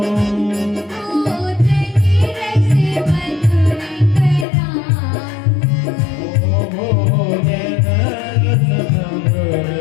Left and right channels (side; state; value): right; drops out; at 4.5 s